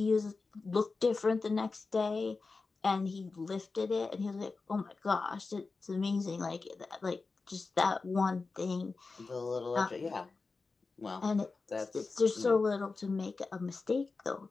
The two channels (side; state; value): right; quieter; 4.1 dB